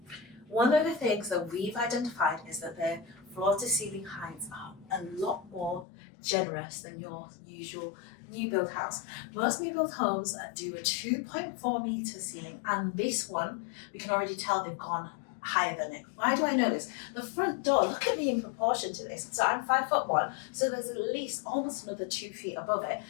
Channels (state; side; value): drops out; right; at 5.9 s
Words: one of the things that we've identified is that their floor to ceiling heights are a lot more generous than your usual new build house. Most new build homes do a 2.4 meter ceiling, and this one, we can already tell they've gone higher than it. Why do I know this? The front door, look at me in proportion to this. So I'm 5'1", so there's at least almost another 2 feet above it.